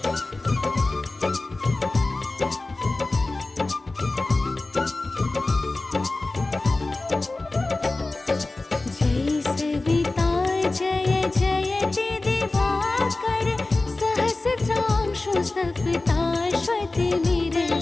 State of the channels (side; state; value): right; quieter; 3.1 dB